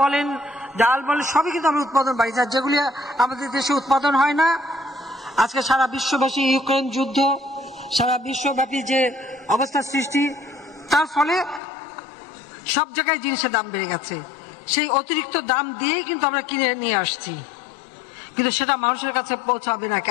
বলেন, ডাল বলেন, সবই কিন্তু আমরা উৎপাদন বাড়িয়েছি। যেগুলি আমাদের দেশে উৎপাদন হয় না, আজকে সারা বিশ্বব্যাপী ইউক্রেন যুদ্ধ, সারা বিশ্বব্যাপী যে অবস্থার সৃষ্টি, তার ফলে সব জায়গায় জিনিসের দাম বেড়ে গেছে। সেই অতিরিক্ত দাম দিয়েই কিন্তু আমরা কিনে নিয়ে আসছি, কিন্তু সেটা মানুষের কাছে পৌঁছাবে না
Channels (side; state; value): right; drops out; at 11.6 s